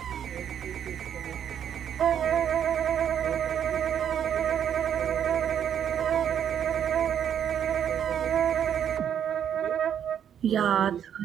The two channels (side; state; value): left; quieter; 9.0 dB